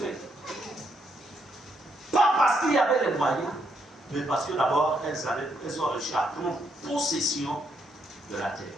Pas parce qu'il y avait les moyens, mais parce que d'abord, elles ont réussi à prendre possession de la terre.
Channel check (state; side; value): normal; both; correlation 0.76